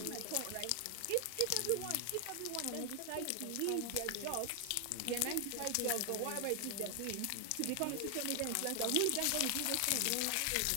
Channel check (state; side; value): different; both; correlation 0.00